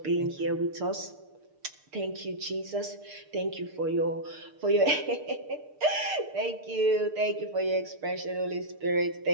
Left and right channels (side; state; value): left; late; 6.7 ms